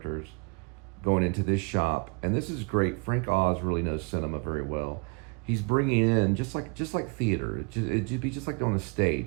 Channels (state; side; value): quieter; left; 33.2 dB